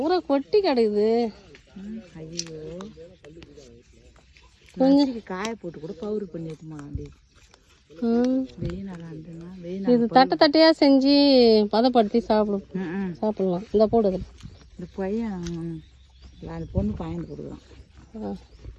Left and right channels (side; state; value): both; identical; correlation 1.00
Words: கொட்டி கிடக்குது. ஐயோ கொஞ்சம் காய போட்டு கூட பவுரு பண்ணிட்டுமா அப்படி வெயில் நல்லா இருந்துன்னா வெயில் இது தட்டை தட்டையாக செஞ்சு பதப்படுத்தி சாப்பிடலாம். இந்த போடுது இந்த பையன் அந்த பொண்ணு பாயந்து கொடுக்குறான்.